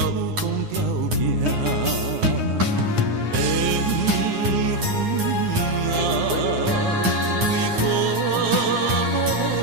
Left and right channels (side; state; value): left; late; 9.8 ms